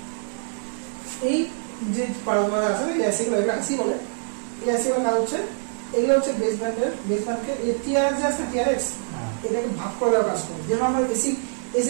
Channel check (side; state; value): left; silent; digital silence